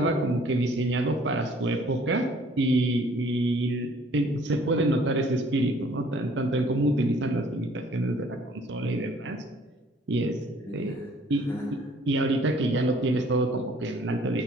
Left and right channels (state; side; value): normal; both; correlation 0.57